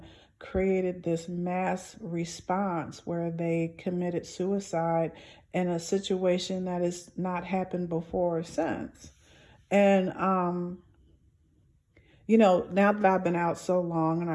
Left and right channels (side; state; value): both; identical; correlation 1.00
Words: created this mass response where they committed suicide in a situation that has not happened before or since. And, now that I've been out so long, and